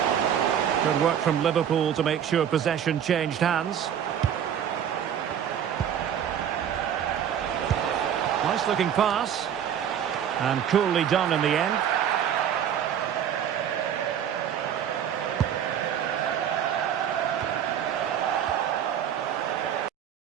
Good work from Liverpool to make sure possession changed hands. Nice looking pass. And coolly done in the end.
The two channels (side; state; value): left; quieter; 9.2 dB